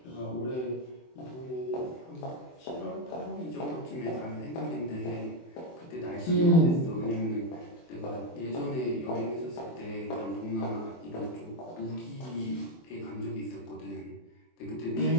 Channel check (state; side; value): late; right; 24 ms